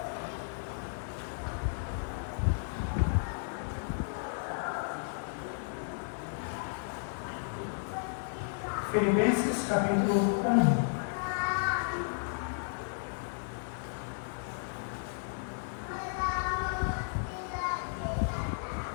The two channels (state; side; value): silent; right; 55 dB below the other